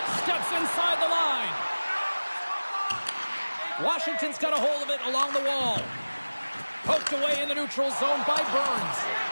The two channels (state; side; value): inverted; both; correlation -1.00